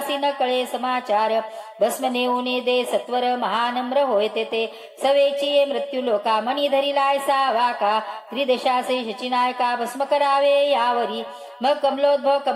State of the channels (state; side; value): identical; both; correlation 1.00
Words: न कळे समाचार भस्म नेऊने दे सत्वर महानम्र होय ते सवेची मृत्यू लोका मणी धरिलाय सा वाका त्रिदेशासे शचिनायका भस्म करावे यावरी मग कमलोद्भव